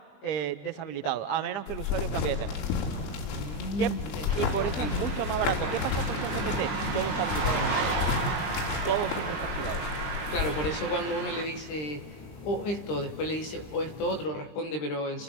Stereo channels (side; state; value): right; late; 20 ms